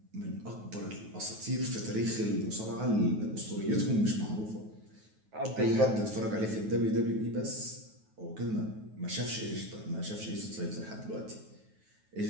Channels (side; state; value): left; late; 9.3 ms